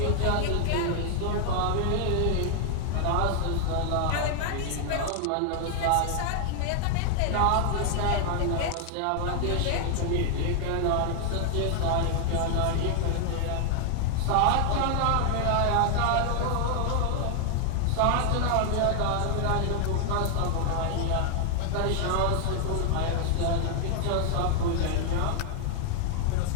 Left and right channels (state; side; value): different; both; correlation 0.00